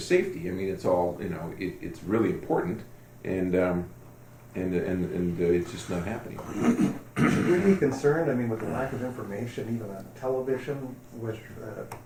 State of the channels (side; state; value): both; identical; correlation 1.00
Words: safety. I mean, it's all, it's really important. And and it's just not happening. Should we be concerned, I mean, with the lack of information, even on television, with